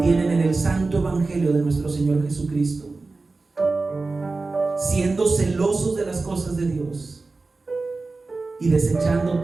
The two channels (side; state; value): left; quieter; 3.7 dB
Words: en el santo Evangelio de nuestro Señor Jesucristo, siendo celosos de las cosas de Dios y desechando